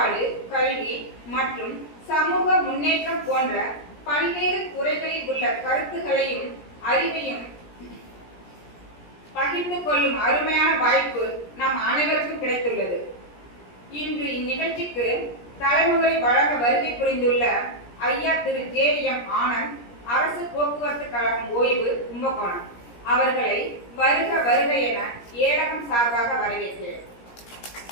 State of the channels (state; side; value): late; right; 17 ms